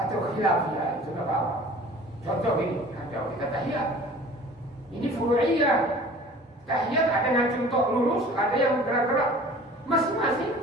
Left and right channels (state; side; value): normal; both; correlation 0.45